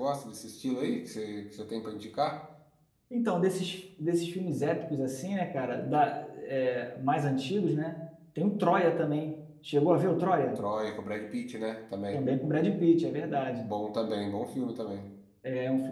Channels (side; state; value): both; identical; correlation 1.00